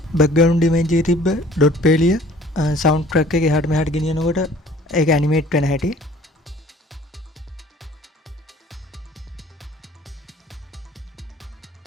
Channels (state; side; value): normal; both; correlation 0.52